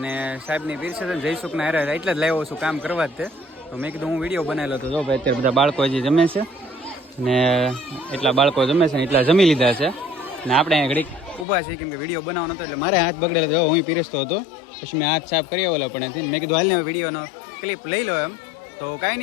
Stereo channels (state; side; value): drops out; right; at 11.5 s